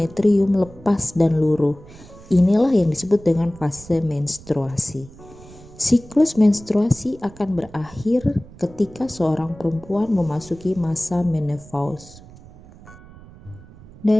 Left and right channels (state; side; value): noise; right; rumble, 21 dB below the sound